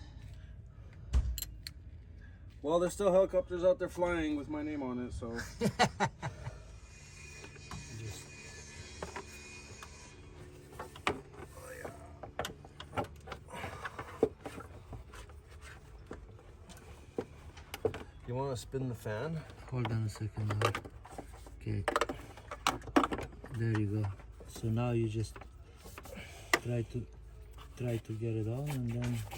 Well, there's still helicopters out there flying with my name on it, so. You want to spin the fan? Hold on a second now. Okay. There you go. So now you just try to get it on, and then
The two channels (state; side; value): identical; both; correlation 1.00